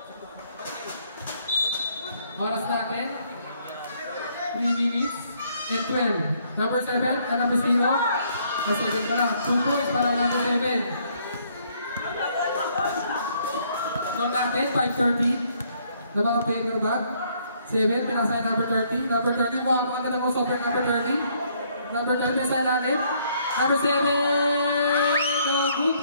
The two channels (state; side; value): inverted; both; correlation -0.67